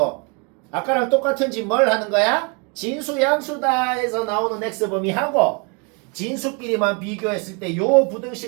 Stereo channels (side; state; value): left; quieter; 32.8 dB